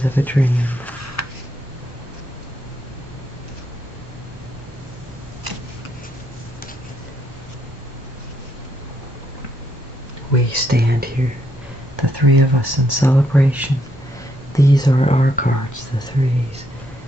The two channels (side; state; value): both; normal; correlation 0.75